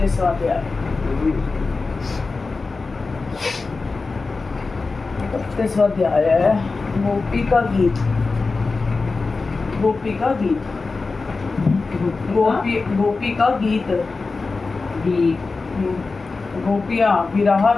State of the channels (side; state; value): right; quieter; 4.0 dB